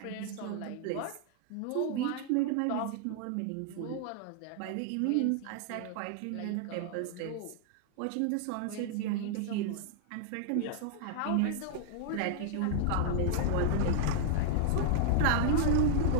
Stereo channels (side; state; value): both; different; correlation -0.01